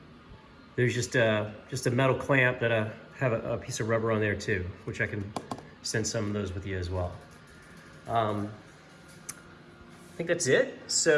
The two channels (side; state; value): both; identical; correlation 1.00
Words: there's just a metal clamp that I have a piece of rubber on there too, which I can send some of those with you as well. I think that's it.